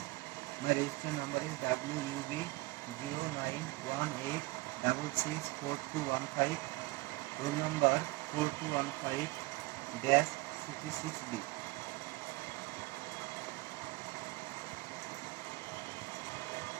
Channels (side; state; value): left; quieter; 22.3 dB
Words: My registration number is WUB 0918664215. Roll number 4215-66B.